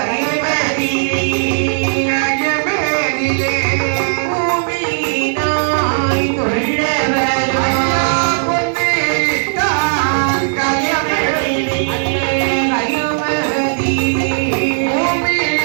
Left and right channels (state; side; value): silent; left; 65 dB below the other